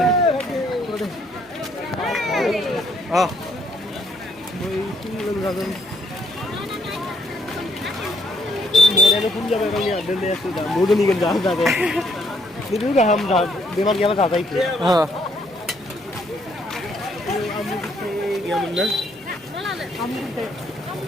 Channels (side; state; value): right; noise; hum, 29 dB below the sound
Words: मोरानो फुल जाबाय गावनि दोननायासो दा मोदोमनिगोन जादे बिदि गाहाम दा बेमार गैयाबा जाजायो आमु फिथाइ गैयामोन ना आमु फिथाइ